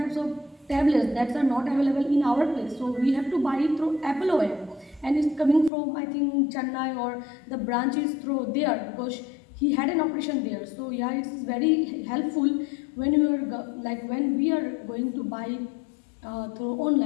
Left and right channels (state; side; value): drops out; right; at 5.7 s